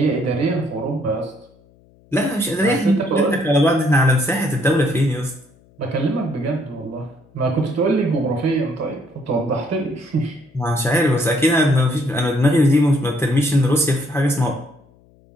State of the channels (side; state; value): left; noise; hum, 30 dB below the sound